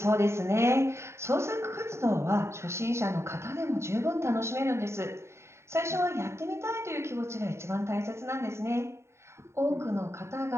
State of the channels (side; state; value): left; late; 0.13 ms